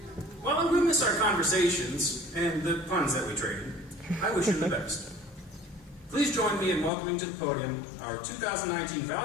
While I will miss our conversations and the puns that we traded, I wish him the best. Please join me in welcoming to the podium our 2019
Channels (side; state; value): right; drops out; at 6.9 s